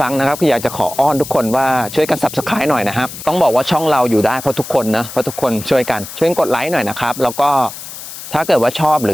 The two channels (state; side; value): noise; left; hiss, 12 dB below the sound